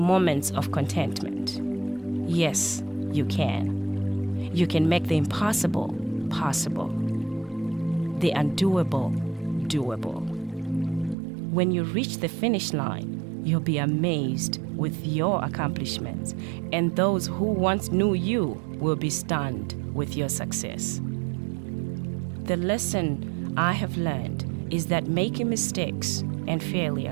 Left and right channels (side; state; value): left; drops out; at 11.2 s